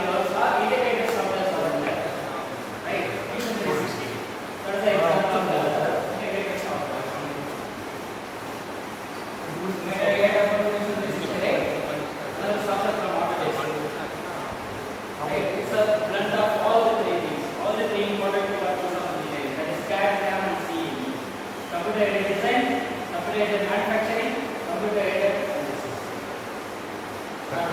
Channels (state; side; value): identical; both; correlation 1.00